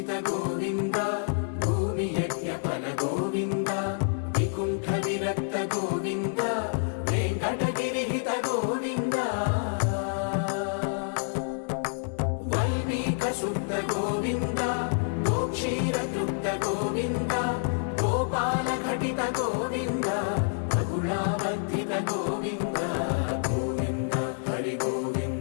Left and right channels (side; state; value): right; silent; digital silence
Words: గోవింద భూమి యజ్ఞ ఫల గోవింద వికుంఠ విరక్త గోవింద వెంకటగిరిహిత గోవింద వల్మీక శుద్ధ గోవింద గోక్షీర తృప్త గోవింద గోపాల ఘటిత గోవింద బహుళావర్ధిత గోవింద గోవింద హరి